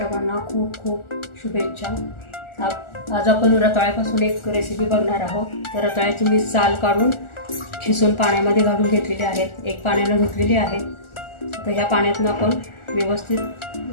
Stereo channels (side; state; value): right; late; 1.4 ms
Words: खूप खूप शुभेच्छा। आज आपण रताळ्यापासून एक रेसिपी बघणार आहोत। तर रताळ्याची मी साल काढून खिसून पाण्यामध्ये घालून घेतलेली आहे, एक पाण्याने धुतलेली आहे। तर ह्या पाण्यातून आपण व्यवस्थित